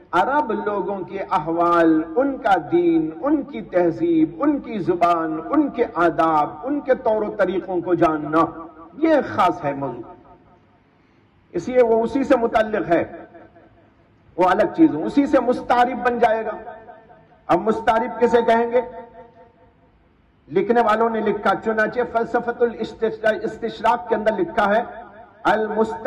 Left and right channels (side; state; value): both; identical; correlation 1.00